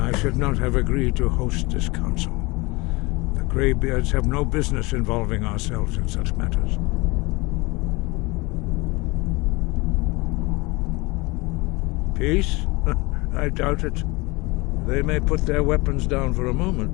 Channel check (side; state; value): right; quieter; 24.5 dB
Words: I should not have agreed to host this council. The Greybeards have no business involving ourselves in such matters. Peace? I doubt it. They may put their weapons down for a moment,